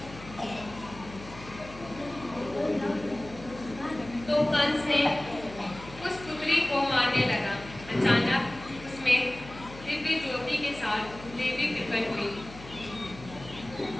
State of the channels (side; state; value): left; noise; hum, 16 dB below the sound